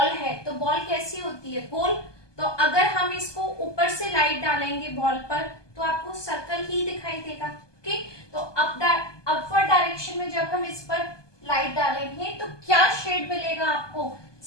है तो बॉल कैसी होती है, गोल। तो अगर हम इसको ऊपर से लाइट डालेंगे बॉल पर तो आपको सर्कल ही दिखाई देगा। ठीक, तो अपवर्ड डायरेक्शन में जब हम इस पर लाइट डालेंगे तो क्या शेड मिलेगा आपको,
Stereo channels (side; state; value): right; late; 1.2 ms